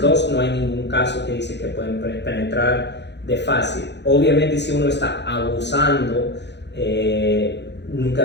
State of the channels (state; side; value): late; right; 0.50 ms